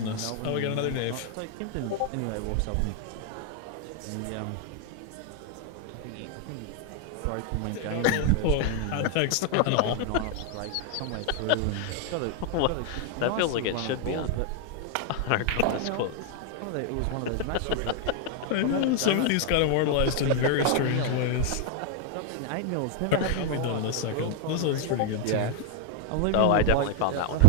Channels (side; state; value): both; different; correlation 0.00